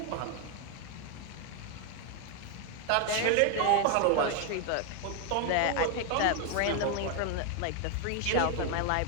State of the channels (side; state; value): both; different; correlation 0.01